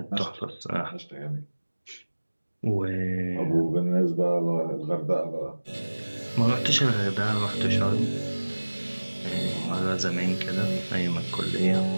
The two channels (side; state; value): both; inverted; correlation -1.00